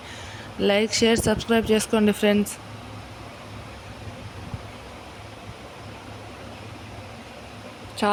లైక్, షేర్, సబ్స్క్రైబ్ చేసుకోండి ఫ్రెండ్స్.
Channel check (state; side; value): identical; both; correlation 1.00